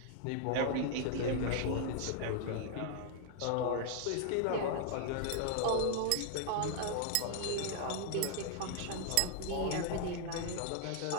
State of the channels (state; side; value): different; both; correlation 0.00